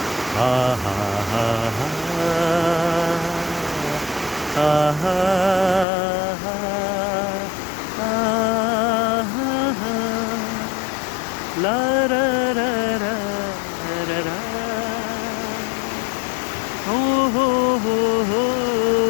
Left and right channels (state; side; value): drops out; right; at 5.9 s